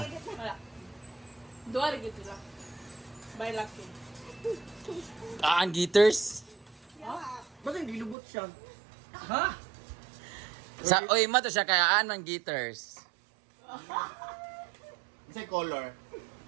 Wala. Duwa rin gito lang. By lucky. Aan Gitters. Ba't hindi lubot siya? Ha? Sa oy ma to siya kay aan man Gitters. Sa color.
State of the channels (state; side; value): drops out; left; at 8.2 s